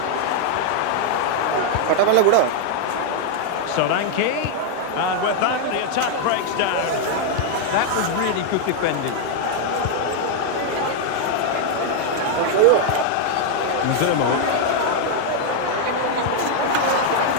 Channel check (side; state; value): both; different; correlation 0.00